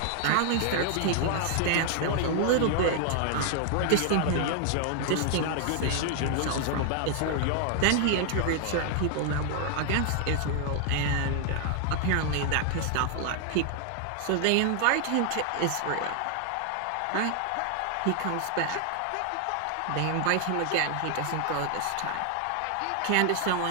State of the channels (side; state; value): both; different; correlation 0.00